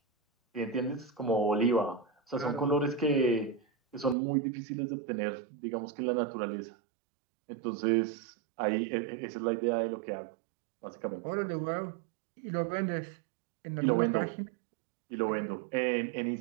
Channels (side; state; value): left; drops out; at 4.2 s